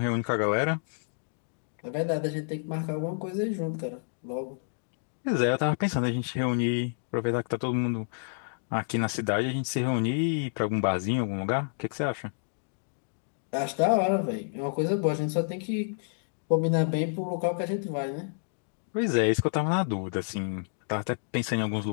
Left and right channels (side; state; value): right; silent; digital silence